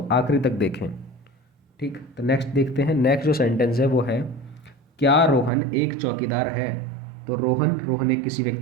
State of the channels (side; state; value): left; drops out; at 5.5 s